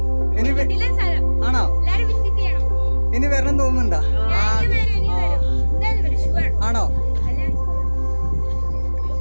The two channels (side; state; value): both; inverted; correlation -1.00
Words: ഇനി ആണോ? ഇനി വരണം തോന്നുന്നുണ്ടാ? ആണോ?